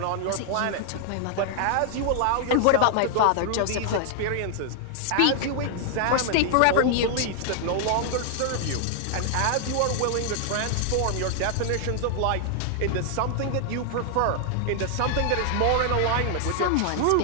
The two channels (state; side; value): different; both; correlation 0.00